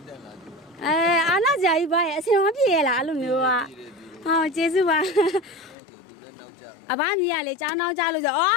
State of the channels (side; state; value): right; drops out; at 5.8 s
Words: အားနာကြကြီးပါရဲ့အစင်မပြေရလားအဲ့လိုမျိုးကဟောကျေးဇူးပါအဘမြည်ရလေကျောင်းနောက်ကြလို့ဆိုအေ